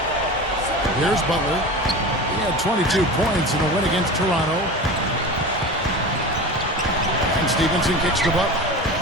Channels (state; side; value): normal; both; correlation 0.31